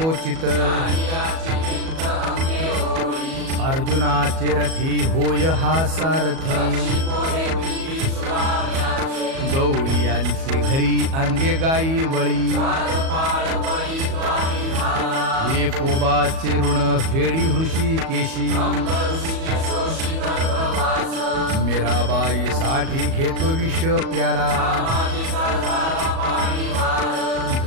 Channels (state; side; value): late; left; 37 ms